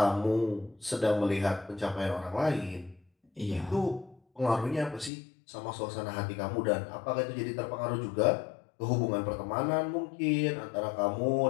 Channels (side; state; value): right; drops out; at 5.1 s